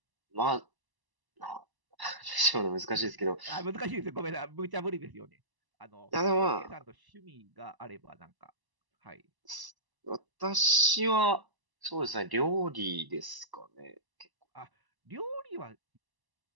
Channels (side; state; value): left; late; 1.0 ms